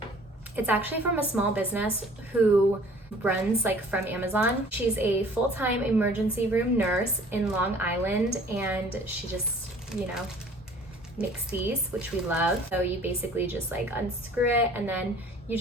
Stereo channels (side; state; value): both; normal; correlation 0.51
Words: It's actually from a small business who runs like from Amazon. She's a full-time emergency room nurse in Long Island, and she just, you know, Mixies, which we love. So you basically just like unscrew it and then you